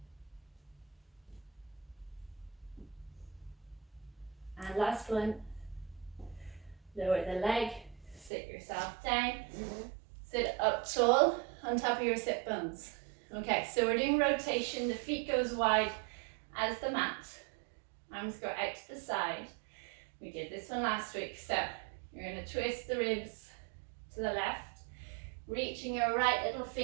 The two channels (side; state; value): left; drops out; at 8.3 s